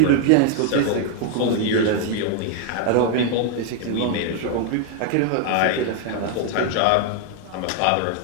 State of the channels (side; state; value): both; different; correlation 0.00